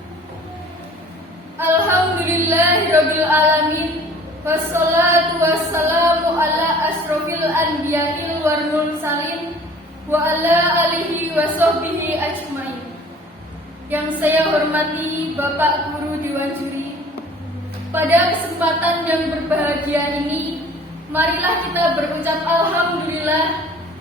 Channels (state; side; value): normal; both; correlation 0.49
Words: Alhamdulillahirabbil alamin. Wassalatu wassalamu ala asrofil anbiya'il wal mursalin wa ala alihi wa sahbihi ajmain. Yang saya hormati Bapak Guru Dewan Juri, pada kesempatan yang berbahagia ini, marilah kita berucap alhamdulillah